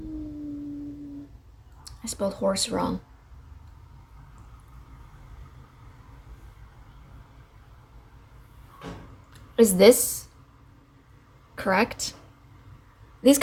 I spelled horse wrong. Is this correct? These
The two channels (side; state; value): both; identical; correlation 1.00